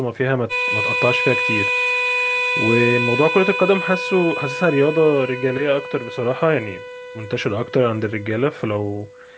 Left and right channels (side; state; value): both; identical; correlation 1.00